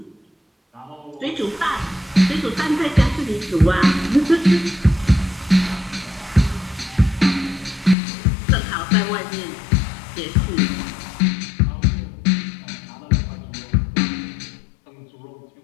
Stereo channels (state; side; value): drops out; right; at 8.0 s